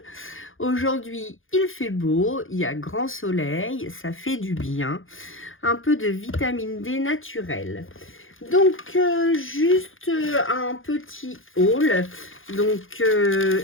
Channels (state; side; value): late; right; 0.59 ms